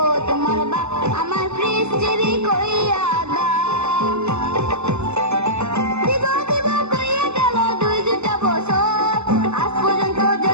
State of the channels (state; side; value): late; left; 0.81 ms